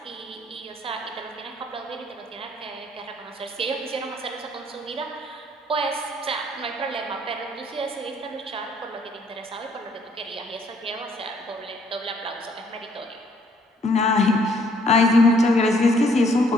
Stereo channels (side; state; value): both; normal; correlation 0.65